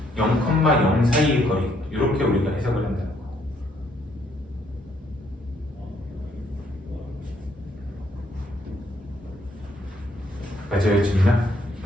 0,0 사이의 거리 이렇게 우리가 해석을 한다는 거야. 맞아요, 지민아?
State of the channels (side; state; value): both; normal; correlation 0.70